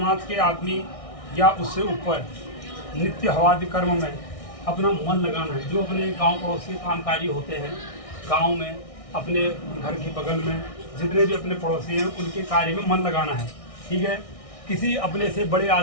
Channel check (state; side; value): late; right; 1.6 ms